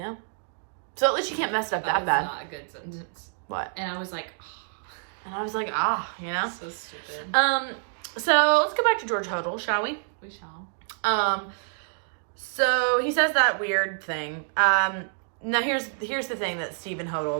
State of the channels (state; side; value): silent; left; digital silence